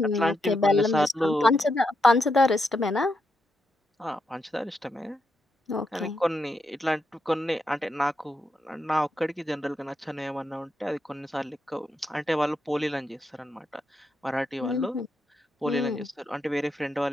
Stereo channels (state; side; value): normal; both; correlation 0.83